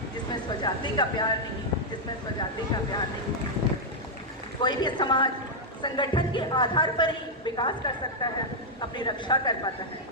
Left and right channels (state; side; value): normal; both; correlation -0.04